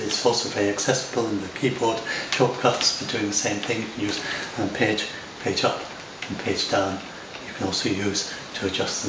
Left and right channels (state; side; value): identical; both; correlation 1.00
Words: It's also very accessible in the keyboard shortcuts for doing the same thing. You can use page up and page down. You can also use to adjust